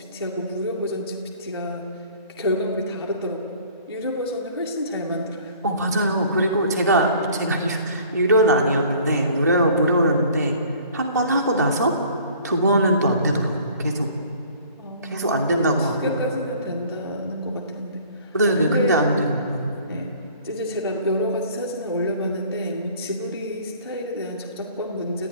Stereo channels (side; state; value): both; inverted; correlation -0.51